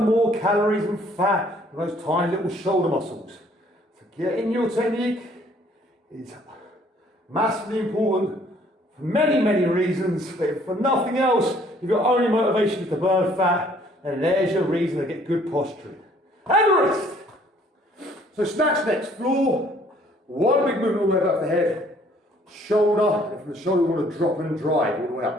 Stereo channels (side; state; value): both; normal; correlation 0.60